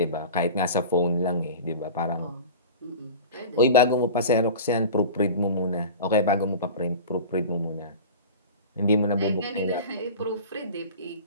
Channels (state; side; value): inverted; both; correlation -0.35